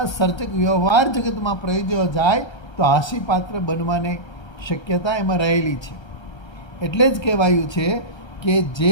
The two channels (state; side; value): late; right; 1.3 ms